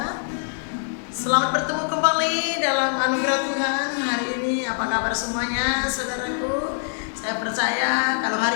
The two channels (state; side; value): silent; right; 55 dB below the other